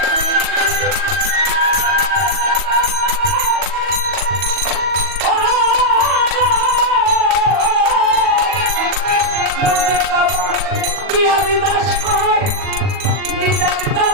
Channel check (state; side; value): late; left; 40 ms